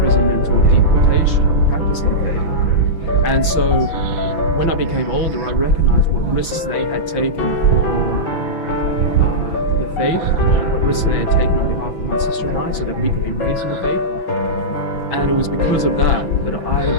or deportation for practicing faith. And so when I became older, I recognized what risks they had taken for the faith, what risks they had taken on behalf of my sister and I, so that we could be raised in the faith. And it was because of that I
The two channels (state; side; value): late; right; 6.0 ms